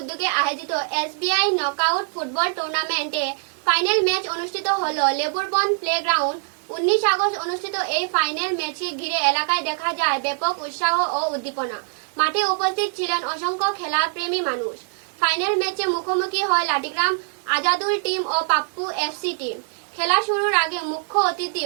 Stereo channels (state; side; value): silent; left; 63 dB below the other